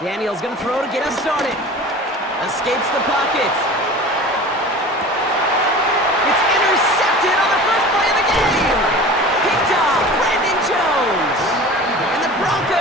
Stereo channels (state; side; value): normal; both; correlation 0.38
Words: Daniel's going to throw to get us started. Escapes the pocket. It's intercepted on the first play of the game. Picked off Brandon Jones. And the